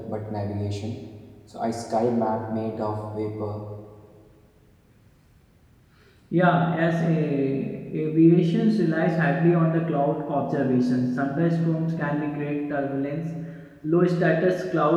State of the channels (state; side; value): identical; both; correlation 1.00